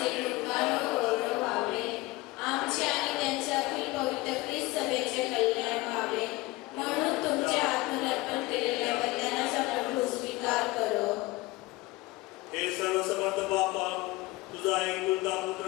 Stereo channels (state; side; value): quieter; right; 20.1 dB